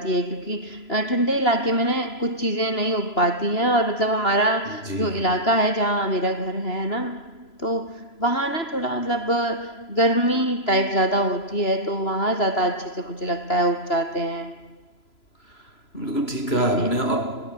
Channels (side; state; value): right; late; 3.0 ms